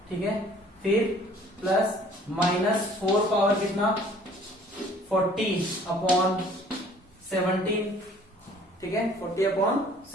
ठीक है, फिर प्लस माइनस 4 पावर कितना 40/17। ठीक है,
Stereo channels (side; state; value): both; normal; correlation 0.54